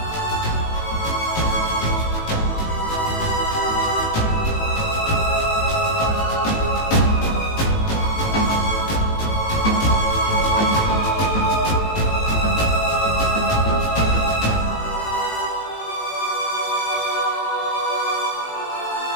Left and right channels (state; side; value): late; right; 18 ms